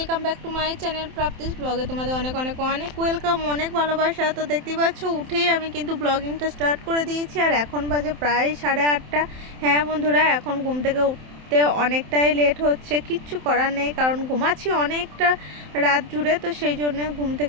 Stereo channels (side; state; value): left; late; 27 ms